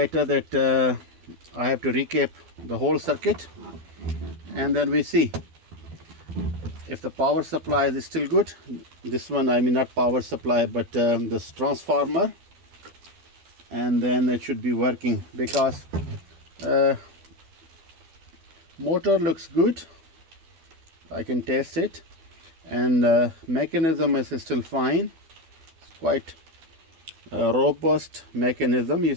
that I have to recap the whole circuit, and then we see if the power supply is still good. This one, I mean not power supply, but this transformer, and then it should be working, because motor looks good. I can test it, and mechanism is still fine. It's quite a robust mechanism, you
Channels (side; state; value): left; late; 12 ms